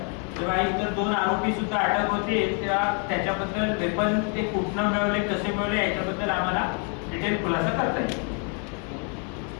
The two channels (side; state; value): right; quieter; 39.4 dB